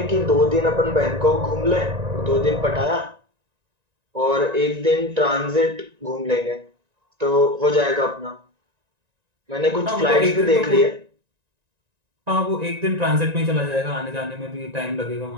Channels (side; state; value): left; late; 1.9 ms